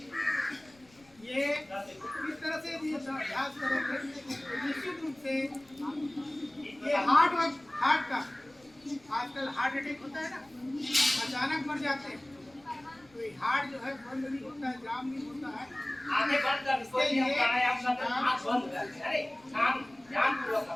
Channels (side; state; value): left; noise; rumble, 29 dB below the sound